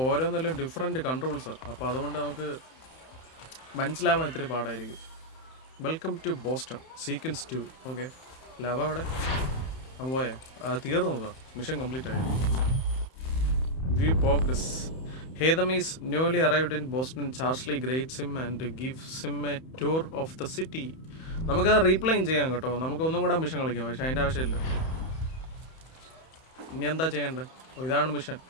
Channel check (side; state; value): right; late; 31 ms